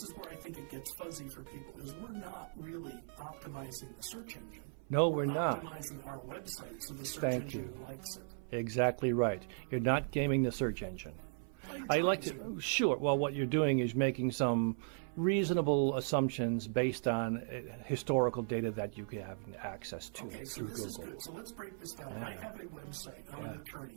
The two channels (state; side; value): silent; left; 53 dB below the other